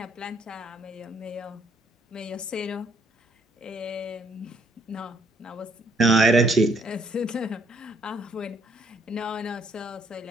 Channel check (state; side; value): normal; both; correlation 0.68